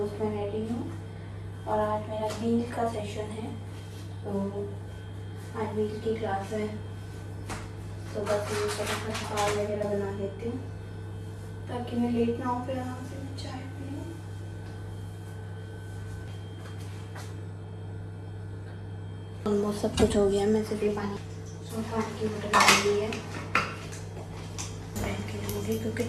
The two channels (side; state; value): both; identical; correlation 1.00